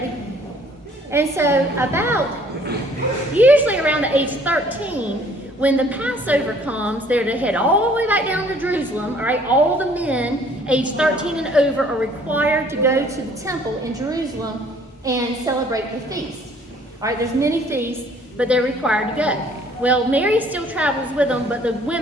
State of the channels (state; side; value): normal; both; correlation 0.58